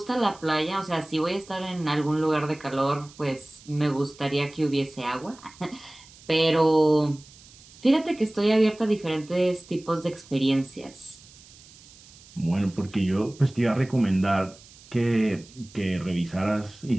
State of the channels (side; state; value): right; noise; hiss, 23 dB below the sound